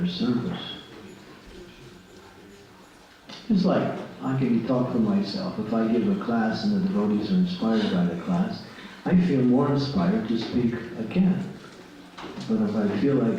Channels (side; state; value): both; identical; correlation 1.00